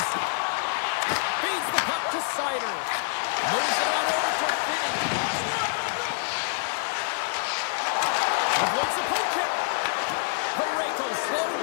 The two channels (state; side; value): silent; right; 60 dB below the other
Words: Feeds the puck to Sider. Moves it on over to Finney. Avoids the poke kick. Pareko slowed